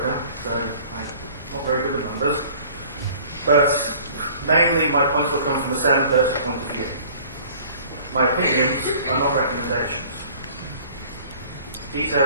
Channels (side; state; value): both; inverted; correlation -0.50